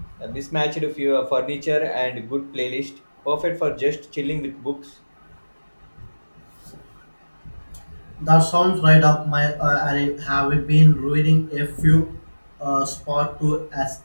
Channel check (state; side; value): inverted; both; correlation -1.00